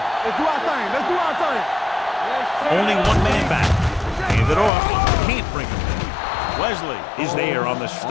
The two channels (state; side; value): drops out; right; at 4.7 s